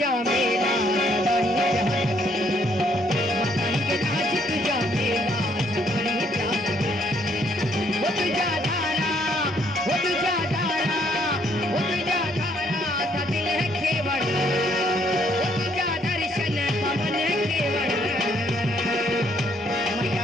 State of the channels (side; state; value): both; normal; correlation 0.68